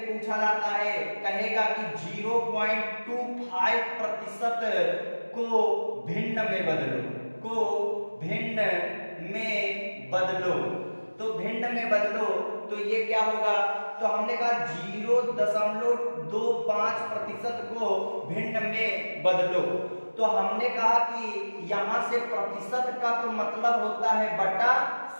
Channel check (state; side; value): inverted; both; correlation -1.00